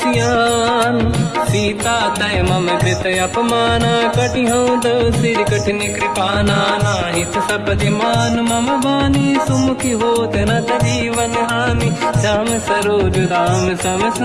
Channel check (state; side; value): identical; both; correlation 1.00